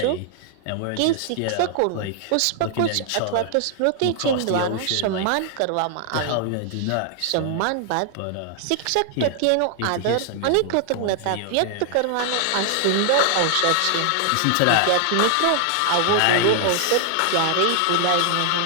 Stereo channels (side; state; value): both; different; correlation 0.00